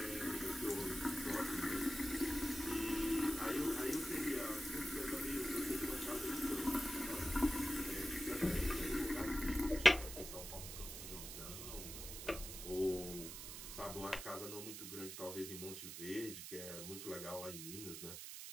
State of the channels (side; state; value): right; noise; hiss, 8 dB below the sound